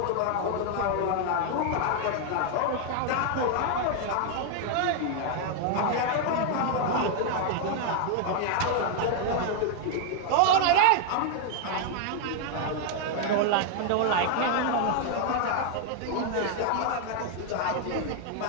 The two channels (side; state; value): both; different; correlation 0.00